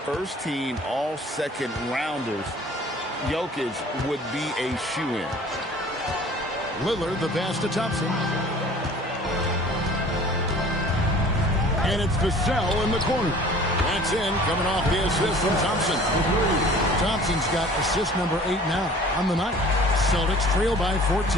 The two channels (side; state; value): both; normal; correlation 0.48